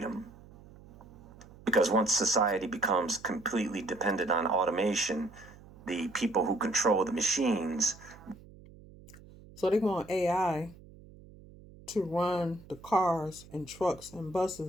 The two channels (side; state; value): right; noise; hum, 21 dB below the sound